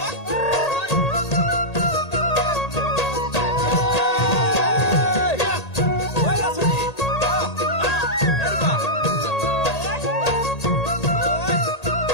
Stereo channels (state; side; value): late; right; 1.8 ms